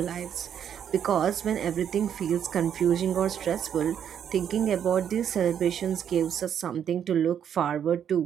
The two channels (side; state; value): left; quieter; 8.8 dB